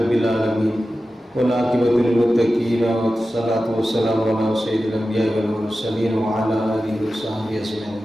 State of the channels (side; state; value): both; normal; correlation 0.93